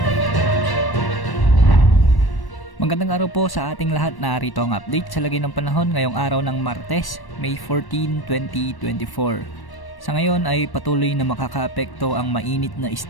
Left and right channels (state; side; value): late; right; 1.1 ms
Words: Magandang araw po sa ating lahat. Narito ang update sa lagay ng panahon ngayong araw ng Martes, May 14, 2024. Sa ngayon ay patuloy na makakaapekto ang mainit na